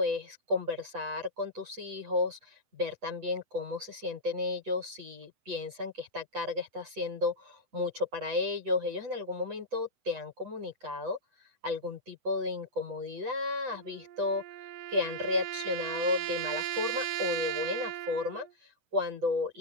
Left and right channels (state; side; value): late; left; 7.9 ms